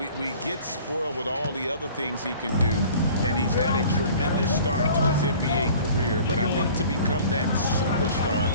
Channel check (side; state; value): both; inverted; correlation -0.47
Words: get spoiled with all the other things he can do, and he's had a tremendous start to his NBA career. But I think to become that superstar,